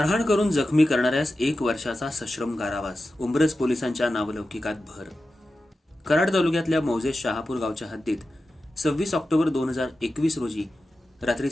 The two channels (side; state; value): both; normal; correlation 0.92